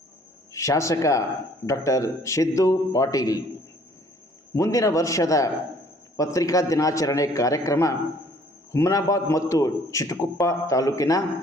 ಶಾಸಕ ಡಾಕ್ಟರ್ ಸಿದ್ದು ಪಾಟೀಲ್. ಮುಂದಿನ ವರ್ಷದ ಪತ್ರಿಕಾ ದಿನಾಚರಣೆ ಕಾರ್ಯಕ್ರಮ ಹುಮನಾಬಾದ್ ಮತ್ತು ಚಿಟಗುಪ್ಪ ತಾಲೂಕಿನ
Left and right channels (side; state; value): both; normal; correlation 0.58